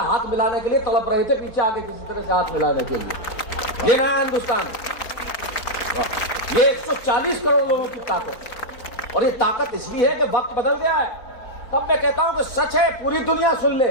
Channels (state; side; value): late; right; 4.4 ms